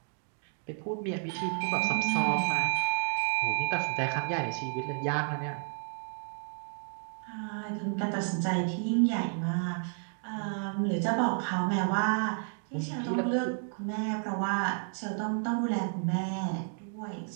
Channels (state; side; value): silent; left; 57 dB below the other